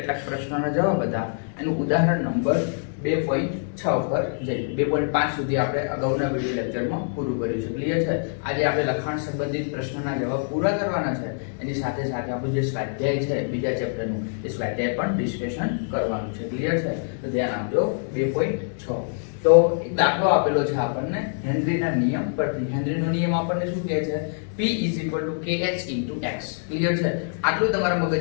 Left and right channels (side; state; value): right; silent; digital silence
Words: પ્રશ્નોના જવાબ હતા। એનું ઉદાહરણ નંબર 2.6 પર જઈ 2.5 સુધી આપણે અગાઉના વિડિયો લેક્ચરમાં પૂરું કર્યું છે। ક્લિયર છે? આજે આપણે લખાણ સંબંધિત પ્રશ્નોના જવાબ પૂરા કરવાના છે। એની સાથે સાથે આપણું જે સ્વાધ્યાય છે બીજા ચેપ્ટરનું, એ સ્વાધ્યાય પણ ડિસ્કશન કરવાનું છે। ક્લિયર છે? તો ધ્યાન આપજો। 2.6 તો એક દાખલો આપેલો છે આપણને હેનરીના નિયમ પરથી। હેનરીનો નિયમ આપણને શું કહે છે? P kh x। ક્લિયર છે? આટલું તમારા